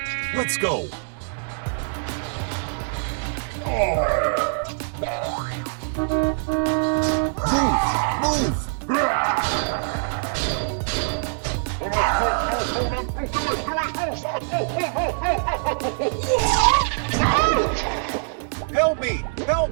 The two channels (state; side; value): silent; left; digital silence